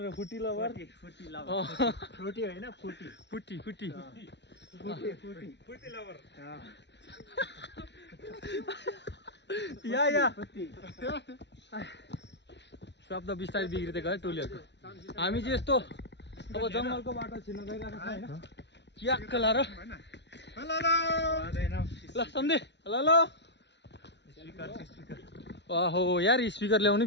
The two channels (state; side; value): late; right; 0.51 ms